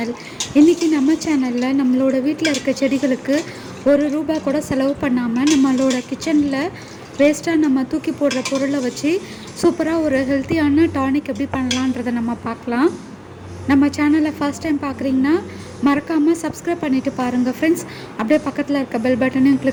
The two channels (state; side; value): identical; both; correlation 1.00